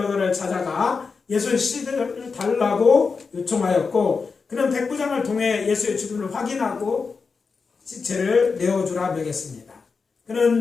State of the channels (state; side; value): quieter; right; 4.9 dB